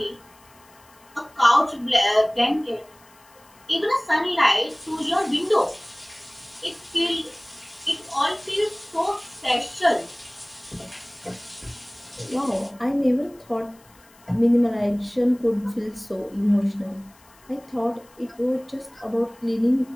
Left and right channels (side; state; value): left; noise; hiss, 28 dB below the sound